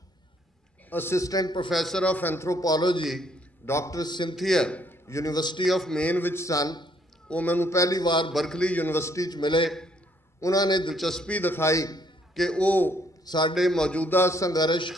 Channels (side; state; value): right; late; 2.4 ms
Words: assistant professor of anthropology doctor Cynthia university of Maine ਵਿੱਚ ਸਨ। ਉਹ ਮੈਨੂੰ ਪਹਿਲੀ ਵਾਰ ਬਰਕਲੀ ਯੂਨੀਵਰਸਿਟੀ 'ਚ ਮਿਲੇ। ਉਹਨਾਂ ਨੇ ਦਿਲਚਸਪੀ ਦਿਖਾਈ ਕਿ ਉਹ ਸਾਡੇ ਮੌਜੂਦਾ ਸੰਘਰਸ਼